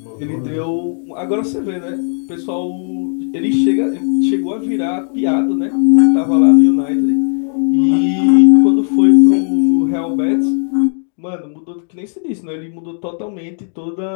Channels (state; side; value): silent; right; digital silence